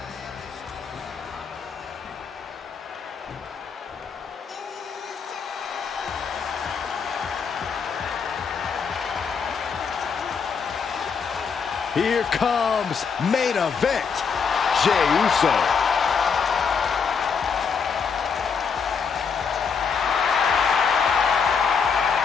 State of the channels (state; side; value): quieter; right; 6.0 dB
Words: Here comes main event, Jey Uso.